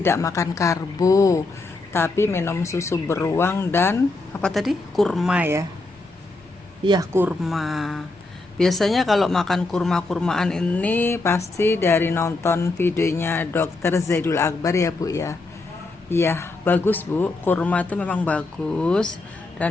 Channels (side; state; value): right; quieter; 3.2 dB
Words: makan karbo, tapi minum susu beruang dan apa tadi? Kurma ya. Iya, kurma. Biasanya kalau makan kurma-kurmaan ini pasti dari nonton videonya Dr. Zaidul Akbar ya Bu ya. Iya, bagus Bu. Kurma itu memang bagus,